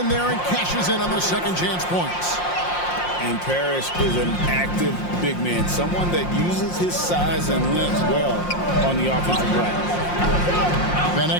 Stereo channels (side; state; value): right; late; 5.6 ms